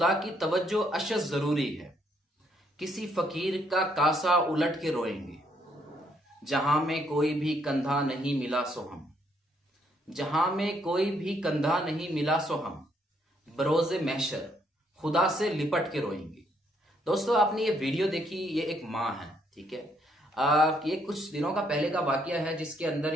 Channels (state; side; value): normal; both; correlation 0.71